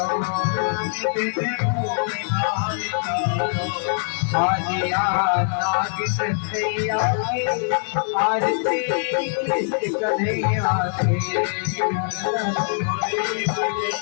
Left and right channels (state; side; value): silent; right; 56 dB below the other